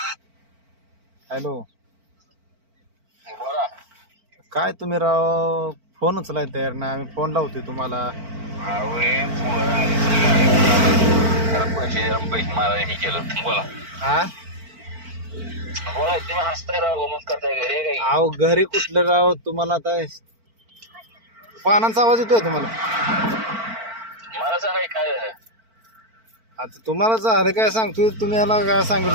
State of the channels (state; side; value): late; left; 4.5 ms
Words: हॅलो काय तुम्ही राव फोन उचलाय तयार ना. आम्ही फोन लावतोय तुम्हाला. पैसे मला हे केलं. बोला हा बोला तुम्ही हसताय राव. मग करताय घरी काही. अहो घरी कुठलं राव तुम्हाला. आता पानांचा आवाज येतोय तुम्हाला. मला सांगाय काय झालं. आता तुम्हाला झालं काय सांगतोय. तुम्ही याला काय